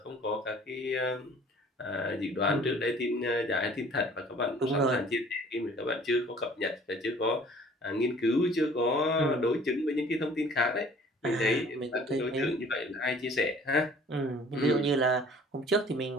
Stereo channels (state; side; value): normal; both; correlation 0.52